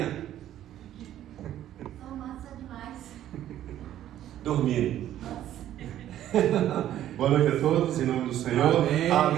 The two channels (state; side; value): quieter; left; 12.1 dB